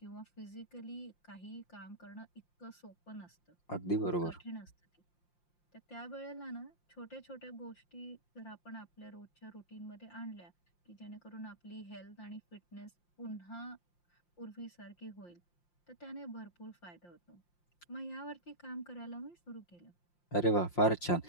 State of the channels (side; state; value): right; late; 5.7 ms